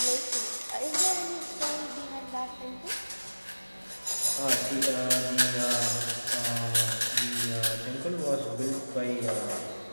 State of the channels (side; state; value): both; inverted; correlation -1.00